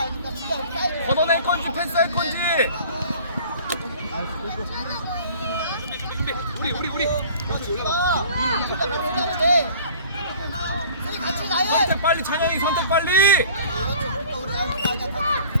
걷어낼 건지 패스할 건지. 우리 선택 빨리 찬영이 선택 빨리.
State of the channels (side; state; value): both; inverted; correlation -0.48